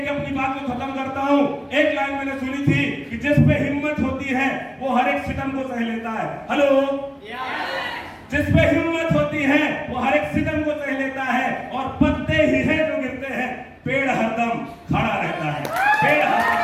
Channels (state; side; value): identical; both; correlation 1.00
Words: अपनी बात को खत्म करता हूँ। एक लाइन मैंने सुनी थी कि जिस पे हिम्मत होती है वो हर एक सितम को सह लेता है। हेलो, जिस पे हिम्मत होती है वो हर एक सितम को सह लेता है, और पत्ते ही है जो गिरते हैं, पेड़ हरदम खड़ा रहता है। पेड़